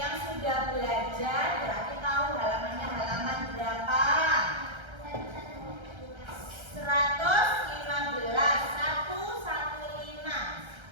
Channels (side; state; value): left; late; 1.3 ms